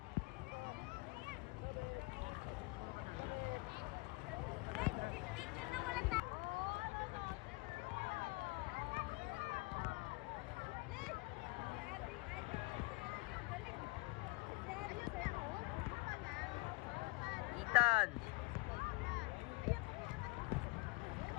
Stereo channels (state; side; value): quieter; right; 25.2 dB